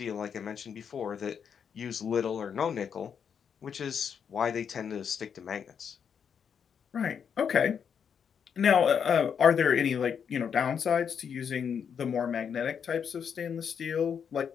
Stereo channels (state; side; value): quieter; right; 7.3 dB